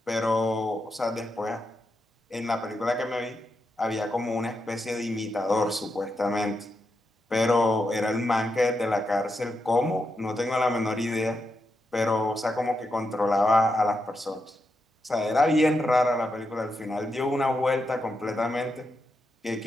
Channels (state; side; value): normal; both; correlation 0.85